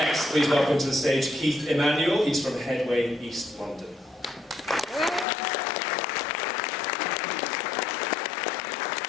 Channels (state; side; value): drops out; right; at 5.2 s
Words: please welcome to the stage Keithmanuel. He's from Headway, East London.